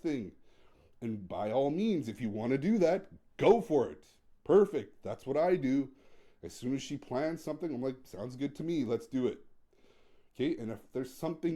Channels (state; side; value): identical; both; correlation 1.00